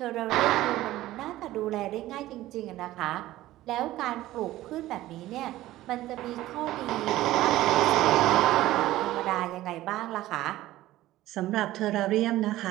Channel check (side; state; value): left; quieter; 15.7 dB